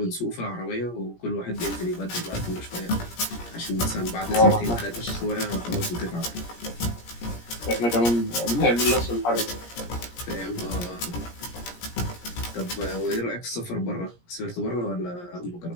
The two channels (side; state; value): right; late; 17 ms